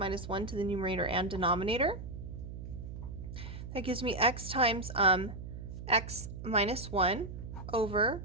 1 to the numerator and denominator. That gives me x times x minus 1 over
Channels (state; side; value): noise; right; hum, 9 dB below the sound